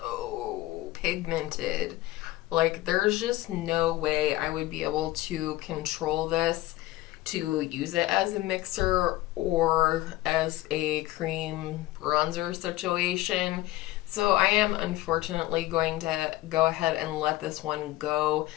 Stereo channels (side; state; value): right; quieter; 17.1 dB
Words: pigmented. Like, there's just no way I would be able to control this to use it as a mixer or as a cream bronzer situation. So I am unfortunately going to go ahead and let this one go.